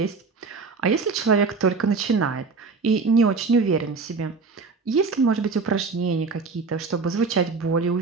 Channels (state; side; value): quieter; left; 4.4 dB